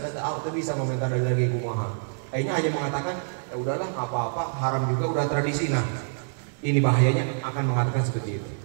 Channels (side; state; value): left; silent; digital silence